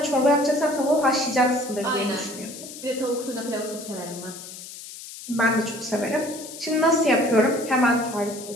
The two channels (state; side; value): noise; left; hiss, 13 dB below the sound